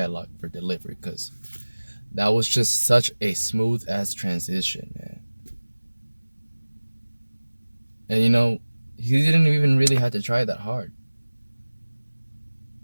for delivery, because that was just such a smooth ass transition, man. And you know, he didn't even really have to try that hard.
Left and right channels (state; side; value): inverted; both; correlation -1.00